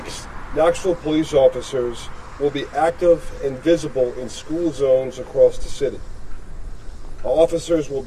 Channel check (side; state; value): both; identical; correlation 1.00